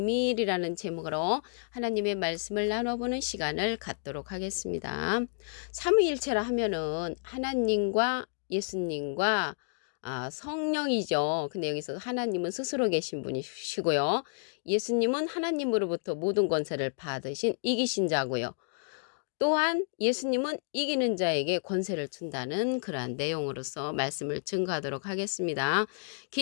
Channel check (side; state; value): right; silent; digital silence